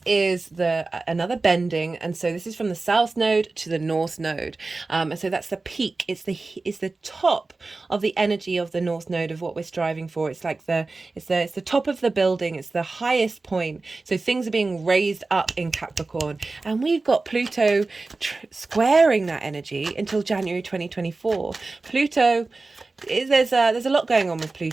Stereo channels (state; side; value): quieter; left; 3.6 dB